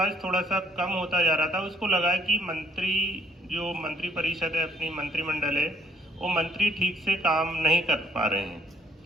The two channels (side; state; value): both; normal; correlation 0.63